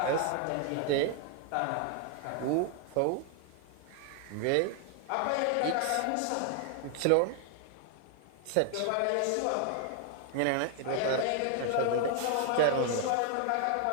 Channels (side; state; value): both; different; correlation 0.00